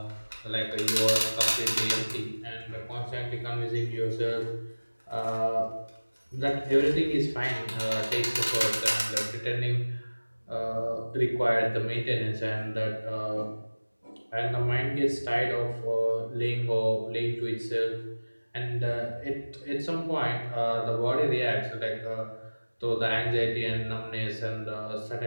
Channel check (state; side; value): inverted; both; correlation -1.00